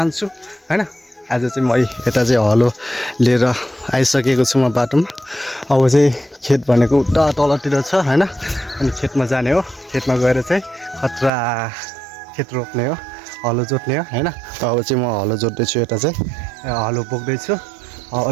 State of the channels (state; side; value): drops out; left; at 11.3 s